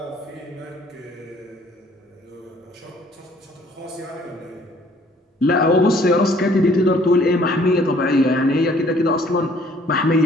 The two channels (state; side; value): normal; both; correlation 0.59